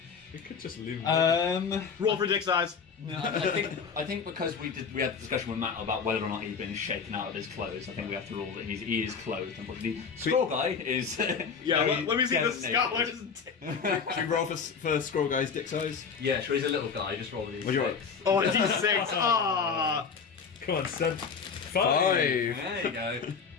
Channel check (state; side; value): quieter; right; 5.9 dB